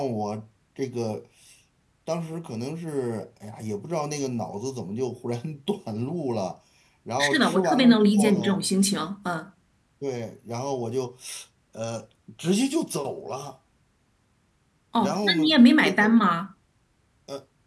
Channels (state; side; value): identical; both; correlation 1.00